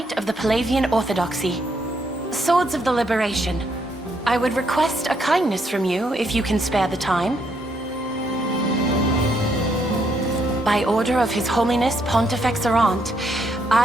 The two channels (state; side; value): normal; both; correlation 0.74